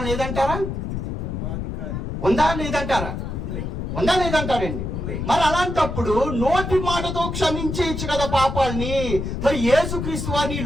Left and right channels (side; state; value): left; noise; rumble, 4 dB below the sound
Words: లేదంటారా? ఉందా లేదంటారా? ఉందా లేదంటారండి? మరి అలాంటప్పుడు నోటి మాటతో క్షమించేయచ్చు కదా పాపాలని. మరి యేసుక్రీస్తు వారిని